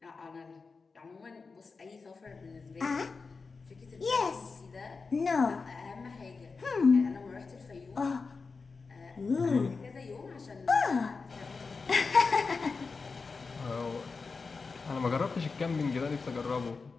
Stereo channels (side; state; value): right; quieter; 4.5 dB